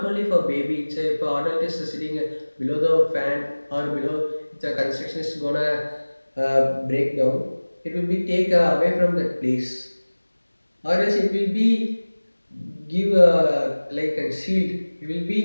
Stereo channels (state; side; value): inverted; both; correlation -1.00